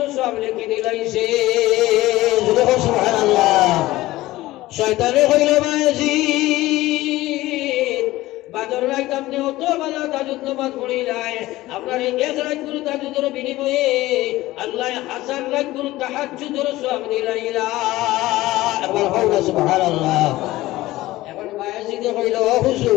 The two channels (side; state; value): right; quieter; 17.5 dB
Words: সব লিখে দিলাইছে সুবহানাল্লাহ শয়তানে কইল বায়জিদ বাদর রাত আপনি অত বেলা তাহাজ্জুদ নামাজ পড়িলাই আপনার এক রাত করে তাহাজ্জুদের বিনিময়ে আল্লাহ হাজার রাত করে তাহাজ্জুদের সব দিলাইলা একবার কইলা সুবহানাল্লাহ এখন বায়জিদ কইল ও